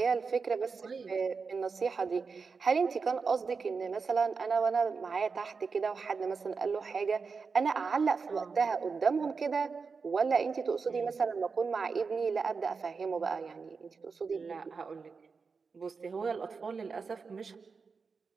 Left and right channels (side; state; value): left; quieter; 5.0 dB